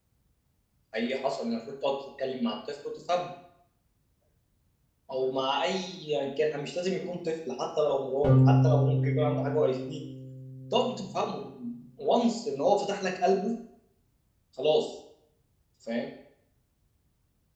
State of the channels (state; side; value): identical; both; correlation 1.00